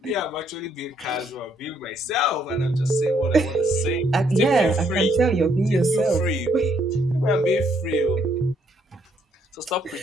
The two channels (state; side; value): normal; both; correlation 0.70